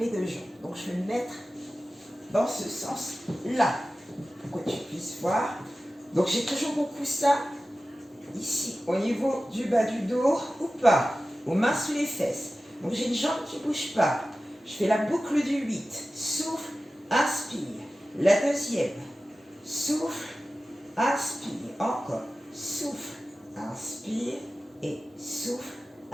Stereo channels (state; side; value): normal; both; correlation 0.95